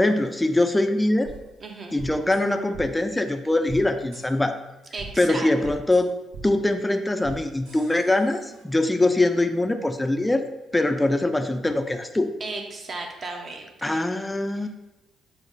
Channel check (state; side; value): normal; both; correlation 0.94